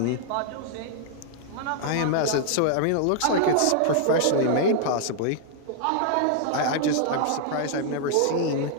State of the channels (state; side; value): different; both; correlation -0.01